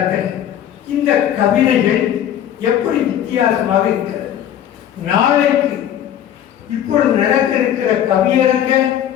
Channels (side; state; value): right; quieter; 10.6 dB